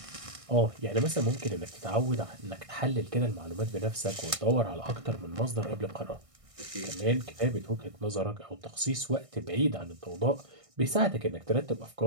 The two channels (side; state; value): left; late; 1.6 ms